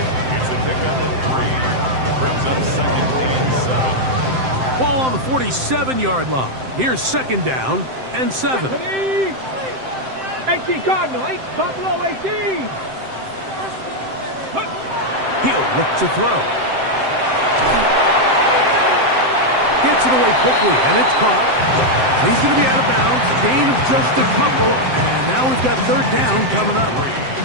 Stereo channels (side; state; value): left; late; 7.7 ms